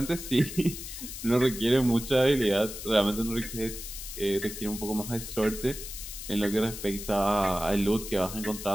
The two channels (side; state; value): left; noise; hiss, 9 dB below the sound